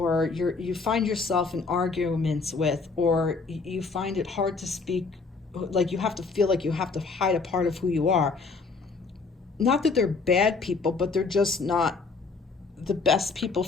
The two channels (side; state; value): right; quieter; 4.3 dB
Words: you find yourself in arguments with, or you find it hard to speak, like you have to feel like you have to hide a part of who you are. Not that they're bad people, but they're just not the best people